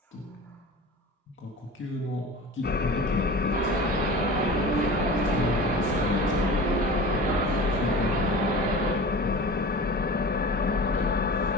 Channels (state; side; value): normal; both; correlation 0.35